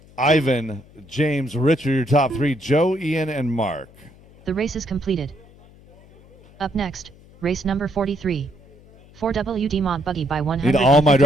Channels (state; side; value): noise; left; hum, 25 dB below the sound